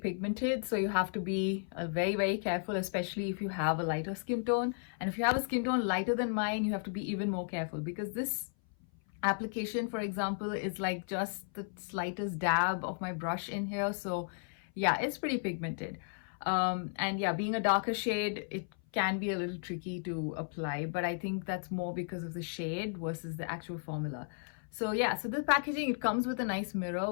so you have to be very, very careful, especially if you have a lighter skin tone. And if you have a skin tone lighter than mine, you have to be even more careful because this application, for example, is like just the slightest dab of my brush in here. So yeah, it's pretty pigmented. And yeah, being a darker shade, it can be a little tricky to apply, but I think that's more because of the shade versus the actual formula. So yeah, so the packaging, it comes with a nice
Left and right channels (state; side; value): silent; right; 55 dB below the other